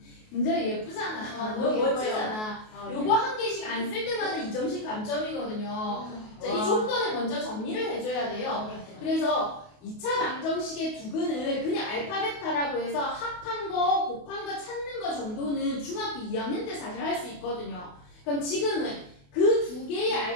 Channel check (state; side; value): late; right; 28 ms